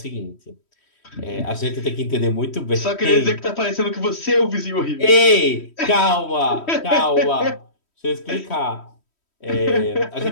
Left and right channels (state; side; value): late; right; 3.1 ms